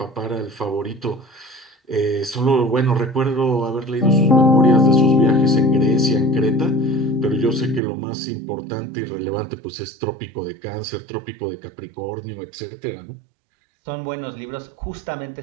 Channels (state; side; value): drops out; left; at 7.8 s